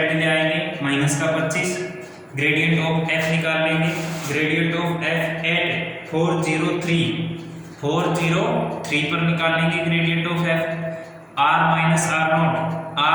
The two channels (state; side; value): identical; both; correlation 1.00